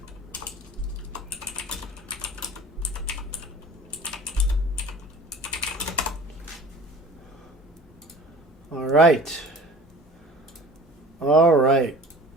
All right. All right.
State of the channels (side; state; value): both; normal; correlation 0.43